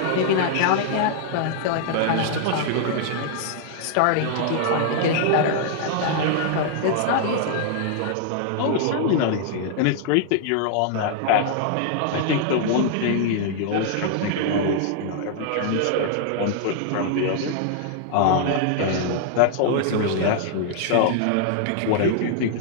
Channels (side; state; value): both; different; correlation -0.01